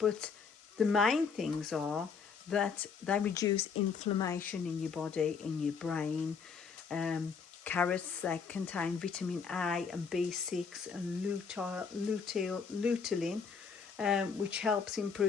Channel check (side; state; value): right; quieter; 5.7 dB